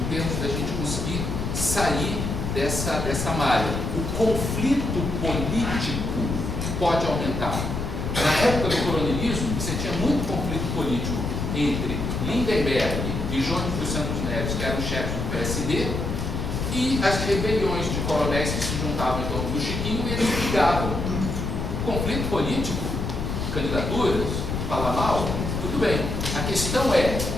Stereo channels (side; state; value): left; noise; rumble, 3 dB below the sound